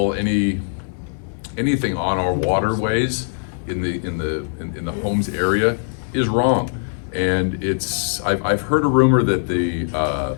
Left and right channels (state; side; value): silent; right; digital silence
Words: any anything on our waterways in the homes area is wrong. And I've heard a rumor that